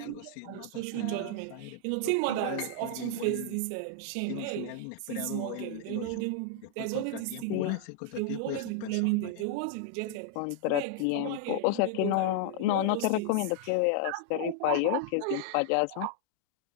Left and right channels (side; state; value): both; different; correlation -0.01